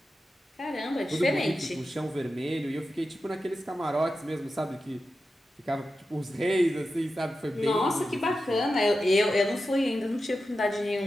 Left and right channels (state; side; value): normal; both; correlation 0.91